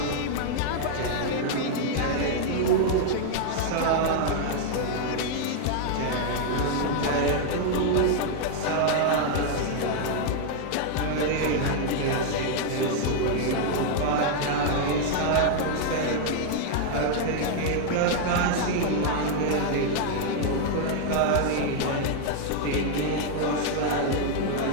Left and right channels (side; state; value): both; different; correlation 0.00